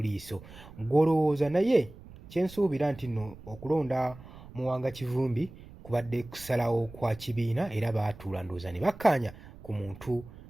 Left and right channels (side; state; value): right; noise; rumble, 18 dB below the sound